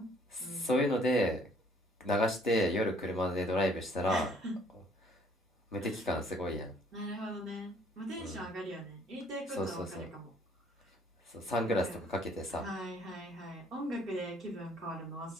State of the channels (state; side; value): normal; both; correlation 0.61